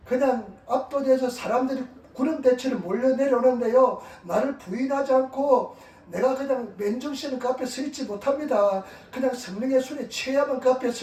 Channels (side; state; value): both; identical; correlation 1.00